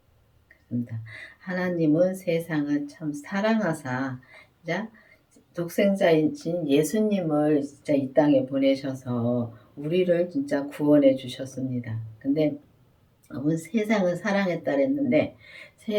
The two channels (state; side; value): identical; both; correlation 1.00